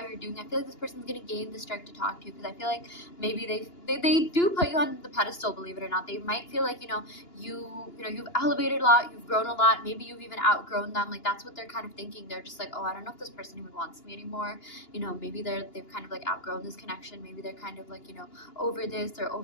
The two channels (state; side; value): late; right; 2.9 ms